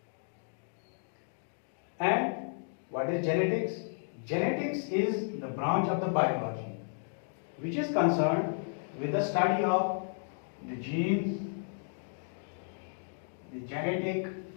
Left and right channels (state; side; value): silent; right; digital silence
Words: And what is genetics? Genetics is the branch of the biology which is concerned with the study of the genes, the genetic